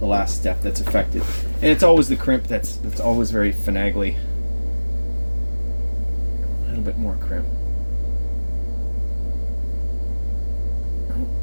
last step that's affected, and it's always the crimp that's always very finagly. A little bit more crimp. Oh,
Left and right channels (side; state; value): both; inverted; correlation -1.00